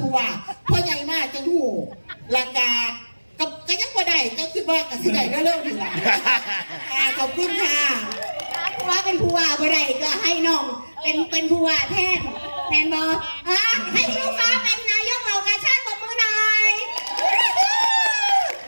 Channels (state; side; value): inverted; both; correlation -1.00